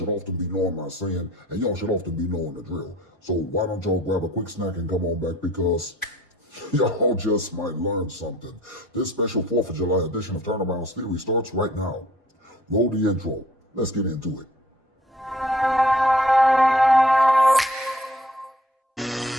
often be knowing my saying, and y'all should often be knowing the drill. So why don't y'all grab a quick snack and come on back, because y'all just might learn something. This special 4th of July edition of Turnaround's Theory starts right now. Roll the intro. Let's get into it.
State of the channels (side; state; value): both; normal; correlation 0.54